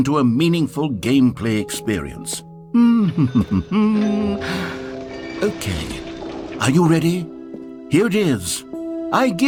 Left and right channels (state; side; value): identical; both; correlation 1.00